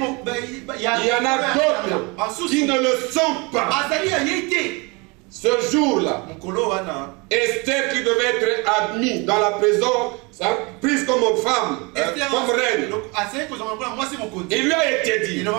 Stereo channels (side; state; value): left; quieter; 28.3 dB